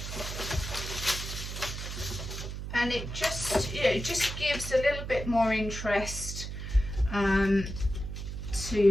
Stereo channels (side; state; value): right; noise; hum, 6 dB below the sound